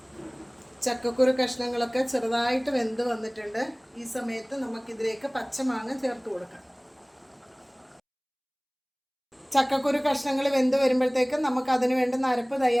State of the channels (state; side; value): identical; both; correlation 1.00